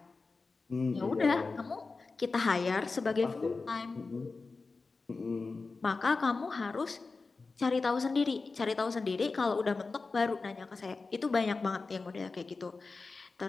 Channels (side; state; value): right; quieter; 4.0 dB